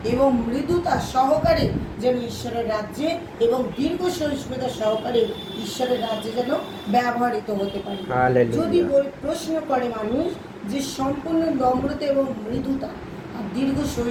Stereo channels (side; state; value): both; identical; correlation 1.00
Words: এবং মৃদুতা সহকারে যেন ঈশ্বরের রাজ্যে এবং দীর্ঘ সহিষ্ণুতা সহকারে ঈশ্বরের রাজ্যে যেন ব্যবহৃত হতে পারি। যদি প্রশ্ন করে মানুষ যে সম্পূর্ণ নম্রতা এবং মৃদুতা আর দীর্ঘ